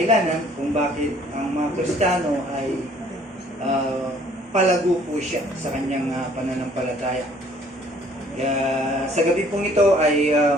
kung bakit ang mga Kristiyano ay palago po siya sa kanyang pananampalataya. Kaya sa gabi pong ito ay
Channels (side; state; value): both; normal; correlation 0.58